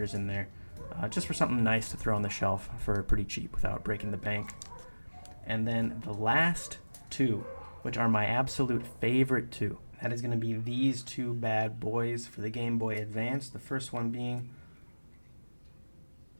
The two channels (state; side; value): inverted; both; correlation -1.00